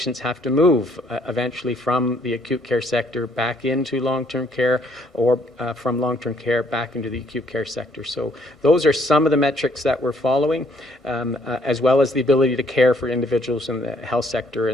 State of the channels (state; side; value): normal; both; correlation 0.66